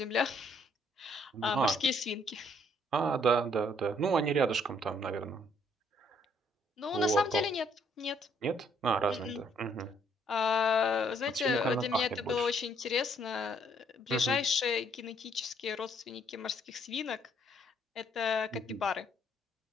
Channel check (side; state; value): both; normal; correlation 0.67